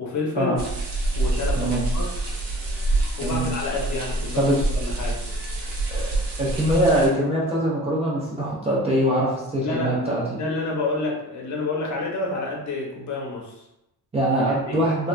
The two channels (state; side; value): normal; both; correlation 0.43